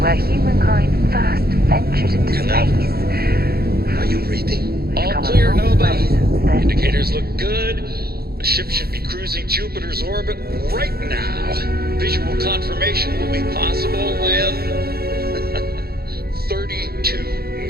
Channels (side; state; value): left; late; 0.45 ms